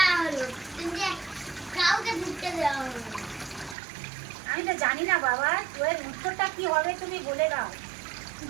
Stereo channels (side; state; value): left; drops out; at 3.8 s